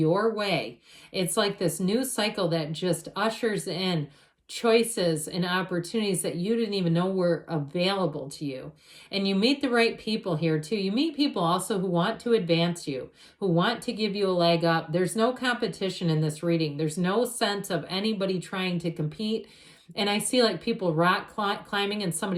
way. It's like this new cycle that just ushers in choices and opportunities that you didn't even know were available to you. And you meet the right people here too. You meet people also who want to advance you, who want to give you a leg up. There's no competition in this reading. There's no sense of anybody trying to compete. And I see like people rock climbing and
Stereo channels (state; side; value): identical; both; correlation 1.00